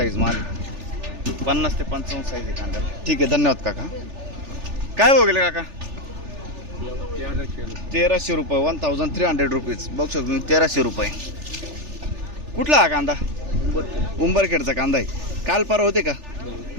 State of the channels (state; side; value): late; left; 3.4 ms